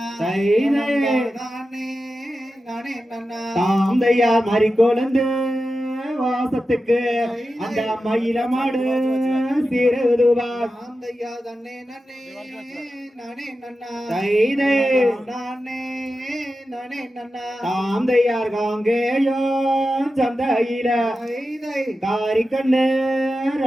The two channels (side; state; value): both; normal; correlation 0.92